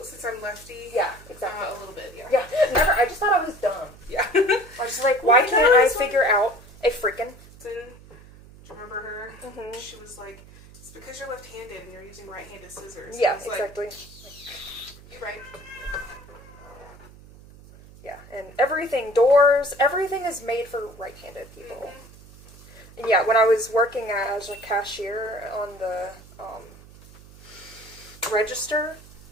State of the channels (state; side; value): noise; right; hum, 21 dB below the sound